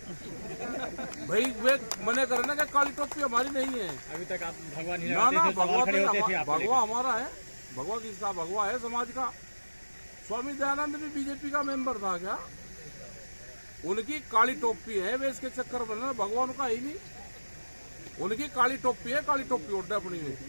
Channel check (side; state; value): both; inverted; correlation -1.00